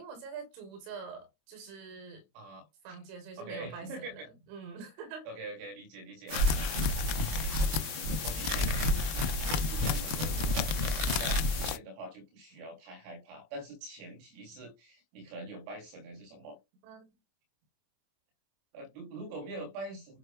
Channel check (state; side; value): late; left; 26 ms